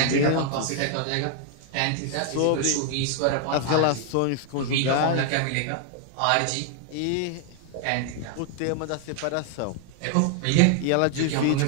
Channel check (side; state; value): both; different; correlation 0.00